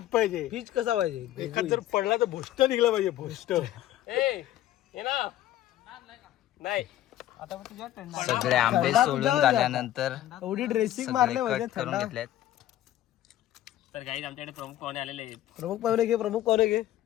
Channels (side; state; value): right; quieter; 13.4 dB